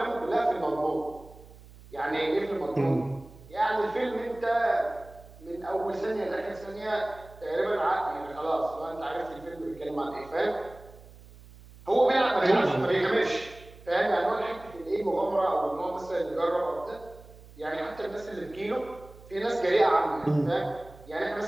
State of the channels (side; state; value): right; noise; hum, 21 dB below the sound